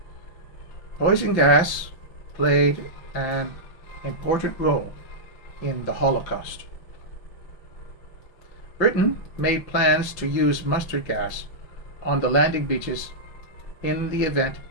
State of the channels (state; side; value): late; right; 5.7 ms